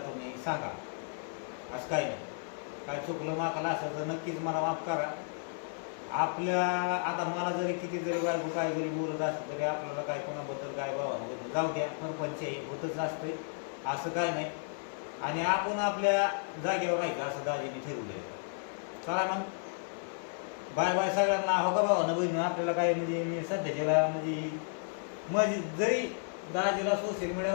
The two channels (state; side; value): silent; right; 56 dB below the other